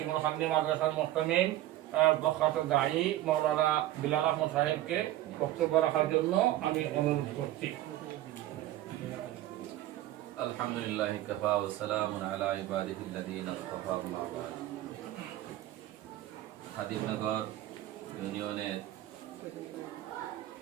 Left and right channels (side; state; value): left; quieter; 14.6 dB